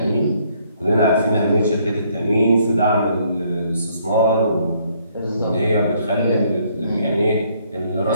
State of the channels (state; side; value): inverted; both; correlation -0.67